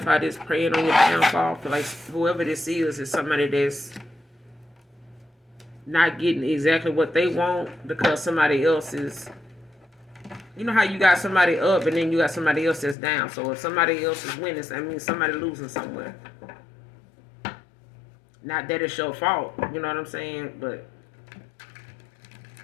this. Praying on your downfall. I feel like whoever this is somebody that's not getting exactly what they want because somebody else is... You know how you got somebody up and then you got somebody else that's down. So if somebody else is winning, that means somebody losing somewhere. Not that it's your fault. You know what I'm saying? But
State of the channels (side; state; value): right; drops out; at 13.0 s